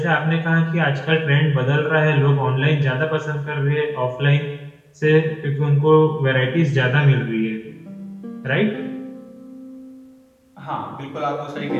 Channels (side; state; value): both; identical; correlation 1.00